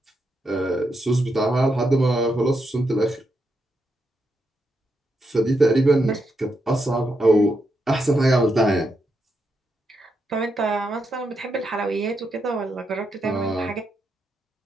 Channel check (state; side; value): normal; both; correlation 0.83